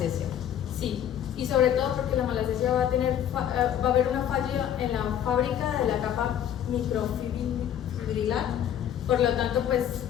Sí, y sobre todo porque la malacesia va a haber una falla en la fábrica de la capa microfibrilar, por lo tanto pues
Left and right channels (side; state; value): right; quieter; 10.0 dB